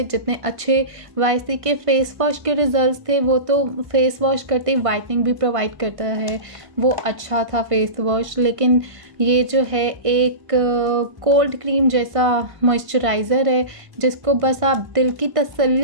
जितने अच्छे YC के फेस वॉश के रिज़ल्ट्स थे। वो तो फेस वॉश करते ही वाइटनिंग भी प्रोवाइड करता है, वो अच्छा था फेस वॉश। लेकिन ये जो है एक कोल्ड क्रीम जैसा मॉइस्चराइज़र है जिसको बस आप दिल की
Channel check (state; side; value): late; left; 1.5 ms